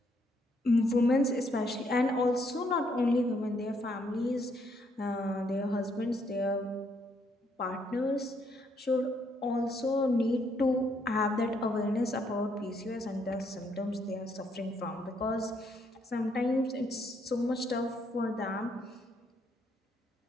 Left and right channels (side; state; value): both; normal; correlation 0.72